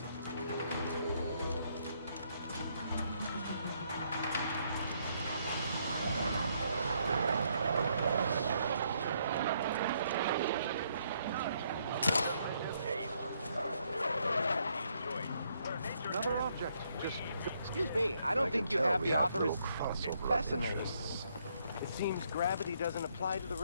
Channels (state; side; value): inverted; both; correlation -0.72